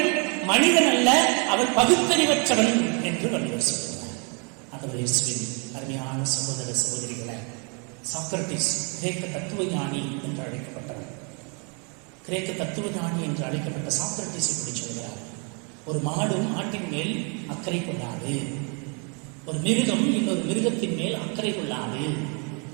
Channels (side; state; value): left; quieter; 35.7 dB